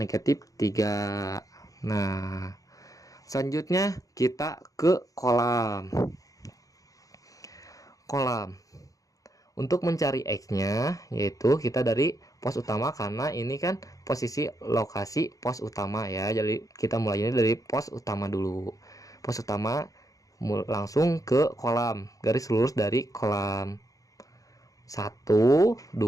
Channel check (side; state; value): right; late; 0.17 ms